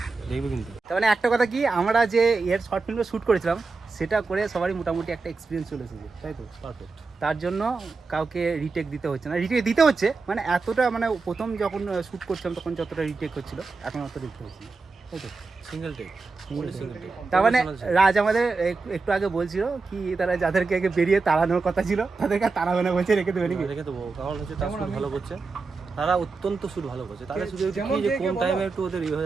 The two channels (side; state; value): left; quieter; 4.2 dB